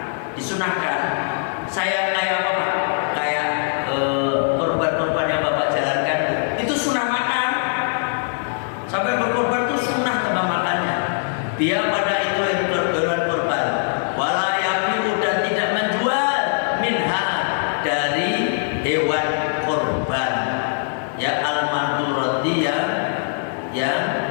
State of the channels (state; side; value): silent; right; 55 dB below the other